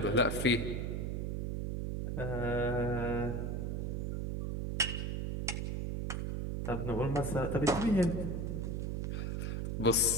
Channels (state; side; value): noise; right; hum, 1 dB below the sound